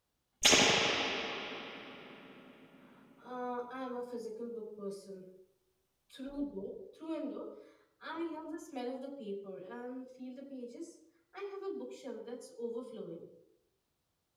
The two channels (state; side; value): identical; both; correlation 1.00